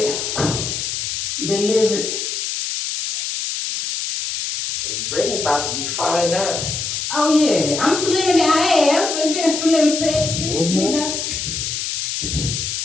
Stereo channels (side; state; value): left; noise; hiss, 3 dB below the sound